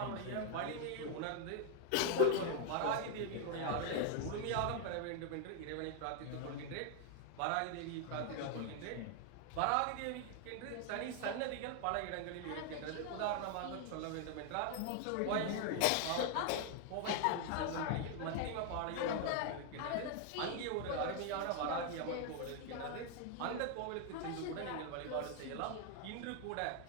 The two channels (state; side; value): different; both; correlation 0.00